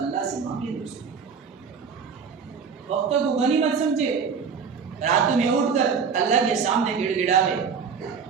سے مانگے دوستو۔ وقت کو غنیمت سمجھے، راتوں میں اٹھ کر اللہ کے سامنے گڑ گڑاوے،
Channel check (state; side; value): quieter; left; 6.1 dB